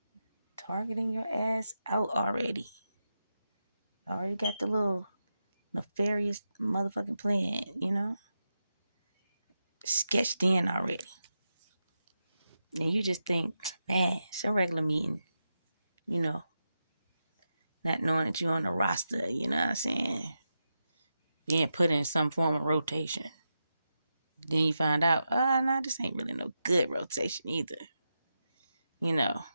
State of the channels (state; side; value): inverted; both; correlation -0.88